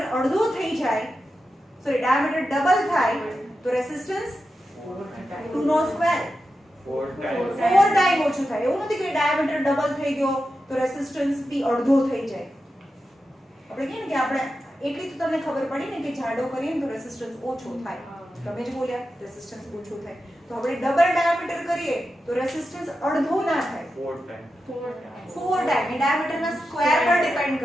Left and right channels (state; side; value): normal; both; correlation 0.90